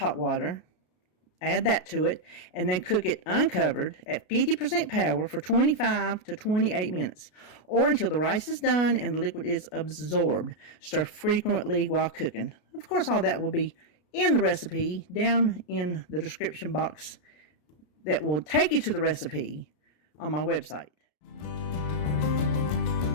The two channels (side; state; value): right; late; 33 ms